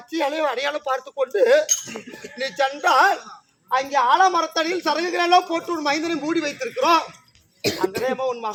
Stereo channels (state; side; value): identical; both; correlation 1.00